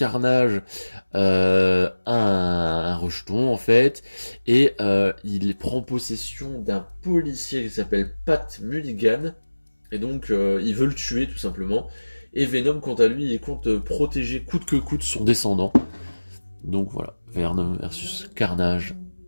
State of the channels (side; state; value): both; inverted; correlation -1.00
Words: a un rejeton en fait, et il prend possession d'un policier qui s'appelle Pat Mulligan, et donc il veut le tuer tout simplement. Et Venom, quant à lui, il compte protéger coûte que coûte son descendant. Donc voilà, Venom versus Carnage.